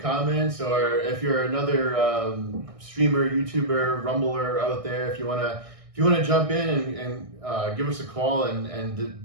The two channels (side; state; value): left; late; 1.6 ms